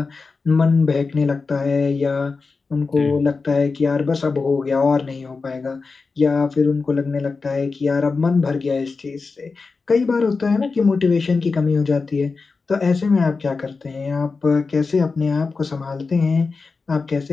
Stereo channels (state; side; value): quieter; right; 4.3 dB